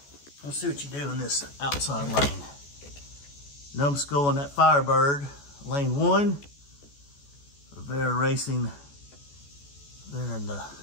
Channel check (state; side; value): late; right; 14 ms